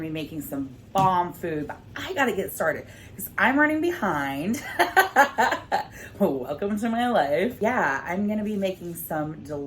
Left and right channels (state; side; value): identical; both; correlation 1.00